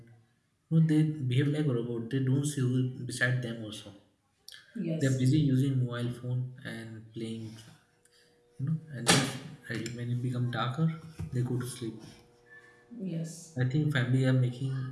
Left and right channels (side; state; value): both; identical; correlation 1.00